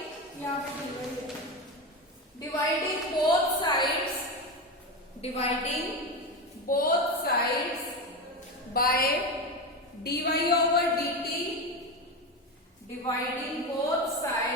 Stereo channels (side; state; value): both; normal; correlation 0.18